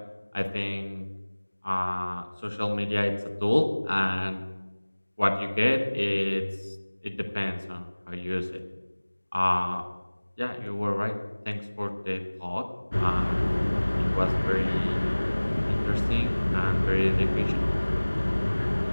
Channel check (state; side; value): inverted; both; correlation -1.00